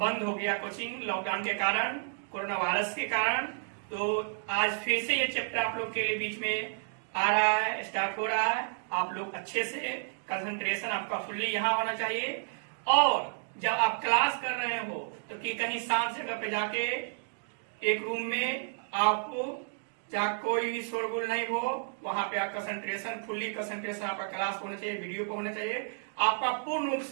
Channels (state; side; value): silent; left; digital silence